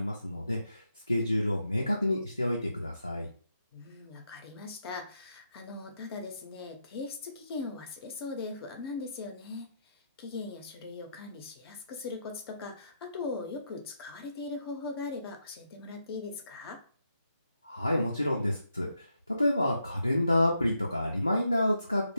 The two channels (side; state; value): both; inverted; correlation -0.82